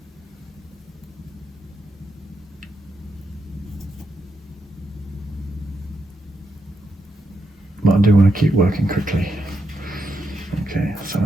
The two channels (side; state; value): both; normal; correlation 0.82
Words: But I do want to keep working quickly. Okay, some